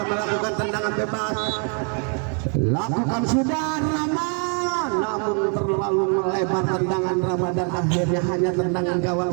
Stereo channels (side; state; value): left; quieter; 39.8 dB